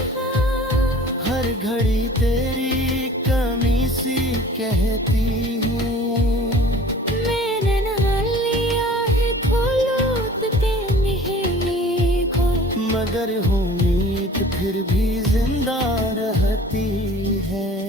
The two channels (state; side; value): normal; both; correlation 0.46